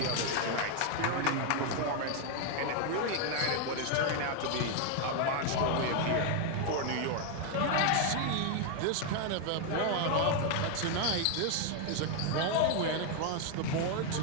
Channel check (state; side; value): different; both; correlation 0.01